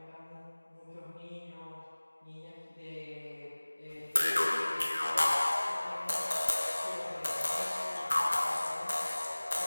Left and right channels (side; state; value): both; inverted; correlation -1.00